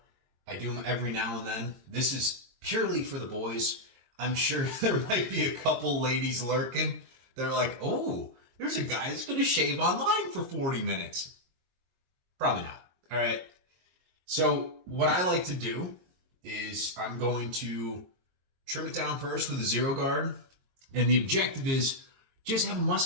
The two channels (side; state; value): left; late; 22 ms